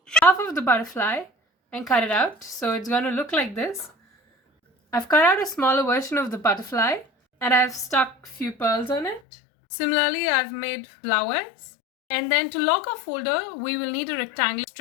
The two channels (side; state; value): right; drops out; at 9.2 s